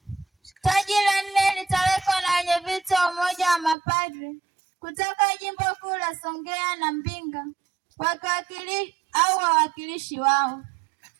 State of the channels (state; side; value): drops out; left; at 3.8 s